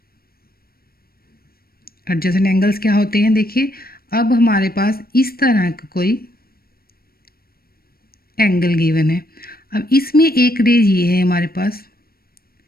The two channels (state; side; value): late; right; 0.44 ms